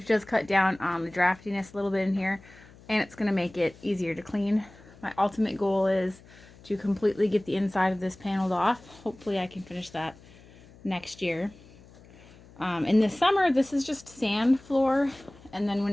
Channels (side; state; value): left; noise; hum, 23 dB below the sound